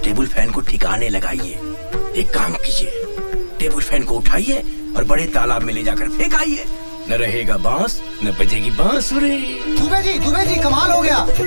टेबल फैन को ठिकाने लगाइए। एक काम कीजिए, टेबल फैन को उठाइए और बड़े तालाब में ले जाकर फेंक आइए। न रहेगा बांस, न बजेगी बांसुरी। दुबे जी कमाल हो गया।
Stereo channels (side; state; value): both; inverted; correlation -1.00